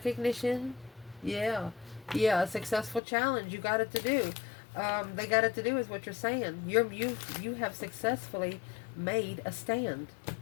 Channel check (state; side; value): drops out; right; at 3.0 s